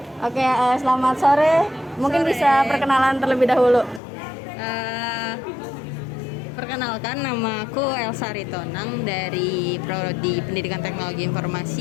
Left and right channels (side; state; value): right; drops out; at 4.0 s